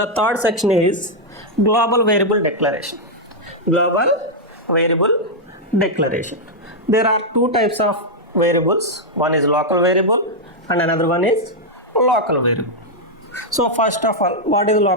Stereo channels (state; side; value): normal; both; correlation -0.04